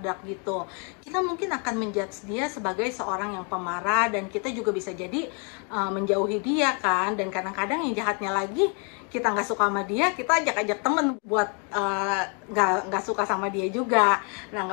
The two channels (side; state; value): right; quieter; 37.4 dB